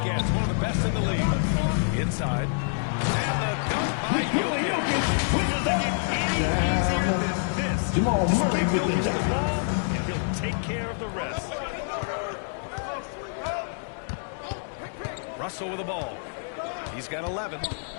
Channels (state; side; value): silent; right; digital silence